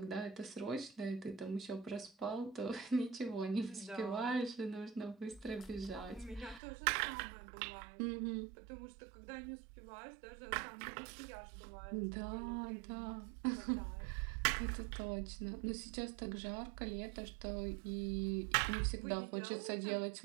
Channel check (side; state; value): left; drops out; at 6.6 s